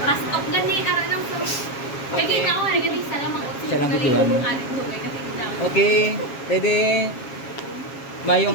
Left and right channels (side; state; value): right; late; 7.3 ms